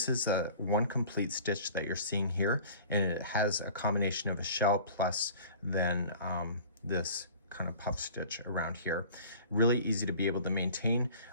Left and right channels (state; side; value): inverted; both; correlation -0.45